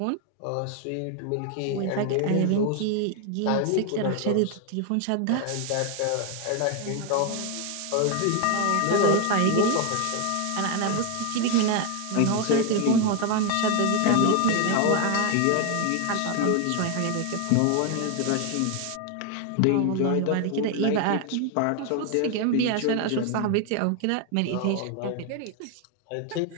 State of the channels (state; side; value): different; both; correlation 0.01